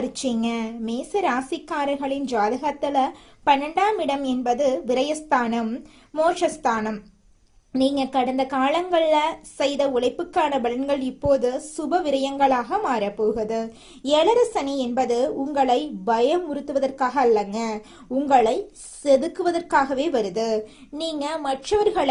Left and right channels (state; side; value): identical; both; correlation 1.00